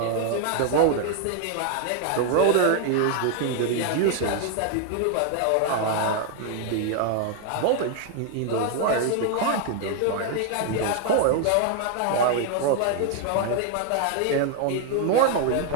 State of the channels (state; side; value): different; both; correlation 0.00